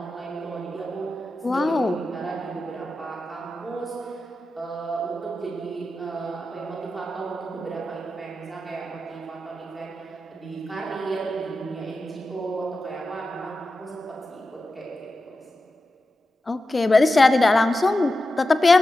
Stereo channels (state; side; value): normal; both; correlation 0.91